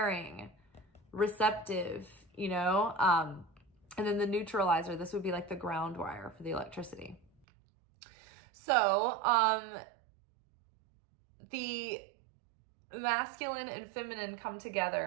receptive, you know? And then the neutralizer, this would be like the ground wire for the electricity. So, the masculine and feminine come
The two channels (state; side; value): drops out; left; at 7.2 s